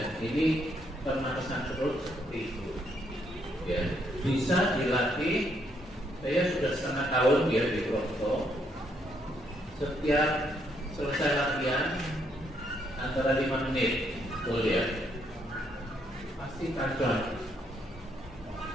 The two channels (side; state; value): both; normal; correlation 0.73